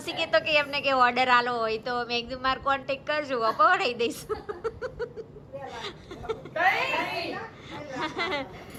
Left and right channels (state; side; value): identical; both; correlation 1.00